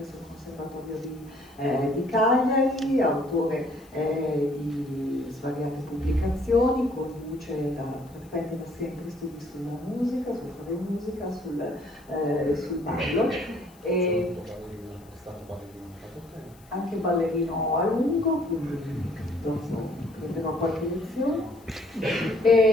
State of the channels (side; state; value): left; noise; hiss, 28 dB below the sound